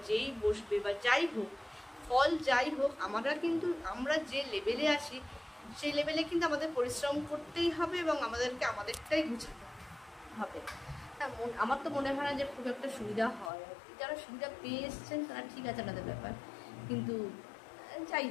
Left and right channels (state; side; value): drops out; right; at 13.5 s